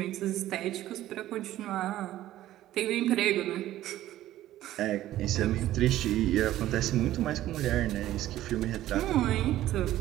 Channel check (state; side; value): quieter; left; 14.0 dB